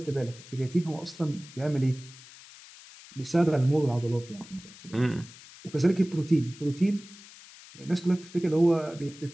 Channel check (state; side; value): noise; left; hiss, 19 dB below the sound